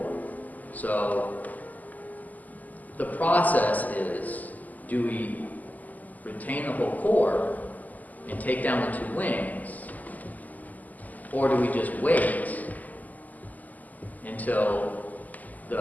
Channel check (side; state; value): right; late; 0.080 ms